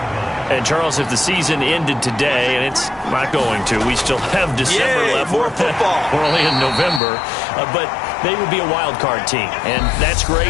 And, Charles, if the season ended today, and it's not going to, we still have December left. More football. We're only in November. But they would be a wild card team. And that's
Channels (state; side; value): drops out; right; at 7.0 s